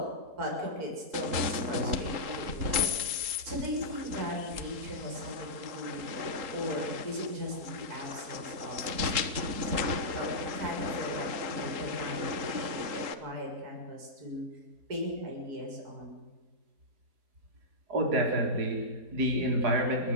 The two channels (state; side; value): late; left; 3.8 ms